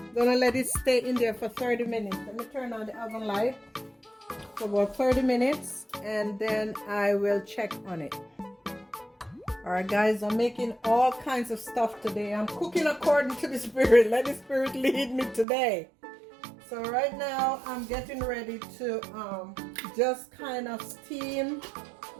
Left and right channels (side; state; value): left; drops out; at 15.5 s